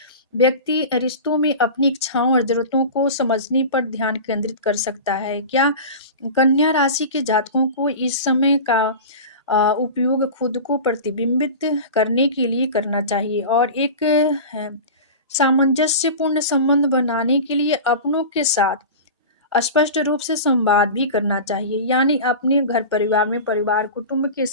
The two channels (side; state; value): both; inverted; correlation -0.31